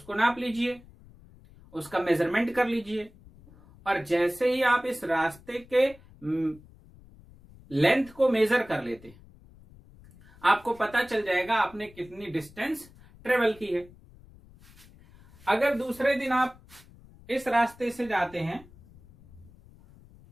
नाप लीजिए, उसका मेजरमेंट कर लीजिए और जैसे ही आप इस रास्ते के लेंथ को मेजर कर लेते हैं आपको पता चल जाएगा आपने कितनी डिस्टेंस ट्रेवल की है। अगर दूसरे दिन आप इस रास्ते से जाते हैं,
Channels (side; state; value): left; noise; rumble, 24 dB below the sound